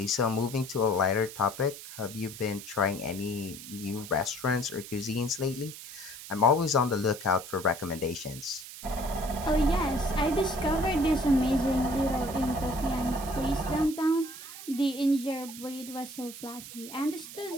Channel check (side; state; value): right; noise; hiss, 13 dB below the sound